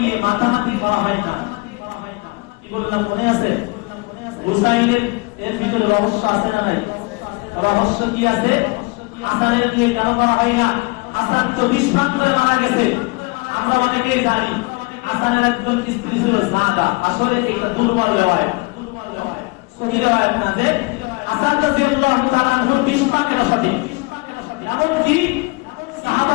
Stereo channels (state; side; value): quieter; right; 26.8 dB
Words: মাথামাতি করা হয় না? কি বললাম মনে আছে? হুসাইনের এর ভিতরে রহস্য আছে না নাই? রহস্য কি আছে? হাসানের নিয়ে কেন করা হয় না? হাসান তো বিস্ফান করে মারা গেছে, আমরা অনেকেই জানি। হাসানের একজন স্ত্রী ছিল সাদা, আসলে একটা দুর্বল রেওয়ায়াত, সহি রেওয়ায়াত না যে হাসান রাদিয়াল্লাহু তাআলা আনহুর বিস্ফান এটা সঠিক। এমনকি